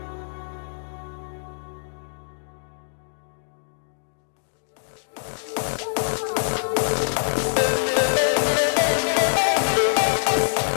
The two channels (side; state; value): right; silent; digital silence